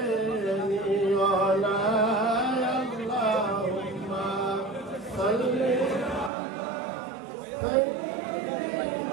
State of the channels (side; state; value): left; drops out; at 6.3 s